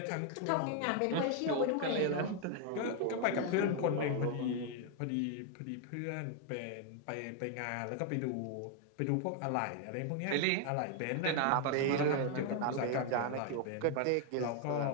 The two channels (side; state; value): both; different; correlation 0.00